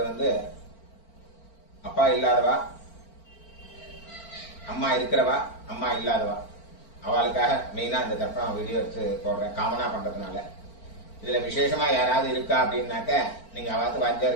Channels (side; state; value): right; late; 4.4 ms